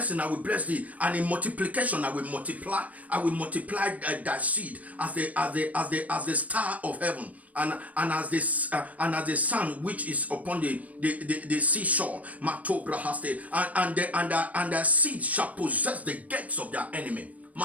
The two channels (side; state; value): left; late; 0.070 ms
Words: I will bless thee, and in multiplication I will multiply thy seed as the star of heaven, and as the sun which is upon the seashore. And the seed shall possess the gates of their enemy.